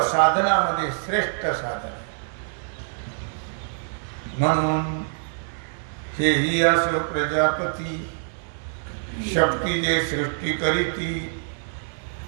साधनामध्ये श्रेष्ठ साधन. म्हणून हे ही असो प्रजापती, शक्ती जे सृष्टी करीती,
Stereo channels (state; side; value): silent; left; digital silence